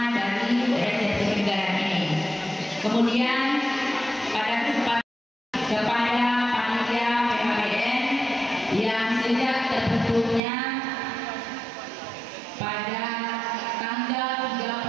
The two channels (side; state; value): left; drops out; at 10.4 s